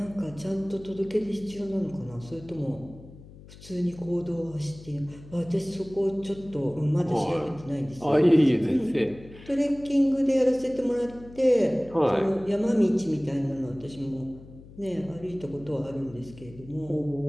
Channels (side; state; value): left; noise; hum, 19 dB below the sound